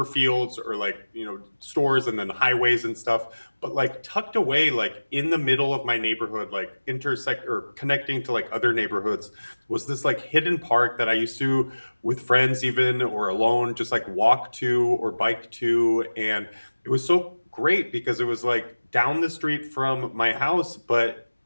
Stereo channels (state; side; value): inverted; both; correlation -1.00